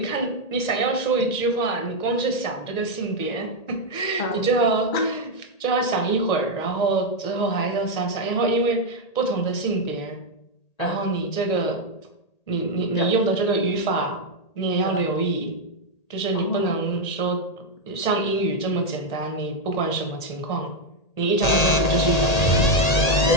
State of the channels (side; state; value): right; late; 1.8 ms